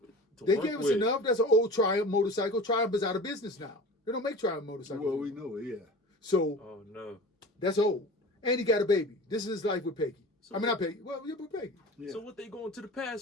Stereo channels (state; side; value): normal; both; correlation 0.37